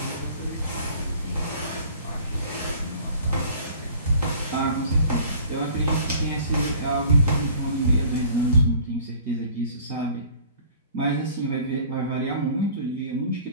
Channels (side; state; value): both; inverted; correlation -0.49